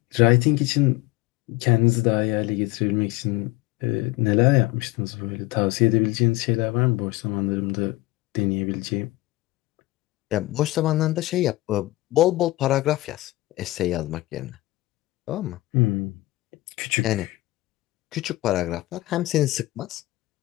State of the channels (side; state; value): right; quieter; 19.0 dB